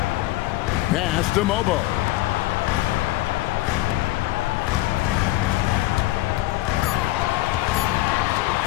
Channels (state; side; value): quieter; right; 17.3 dB